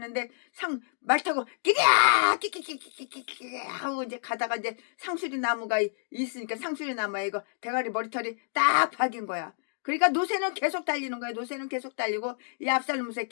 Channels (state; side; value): silent; right; digital silence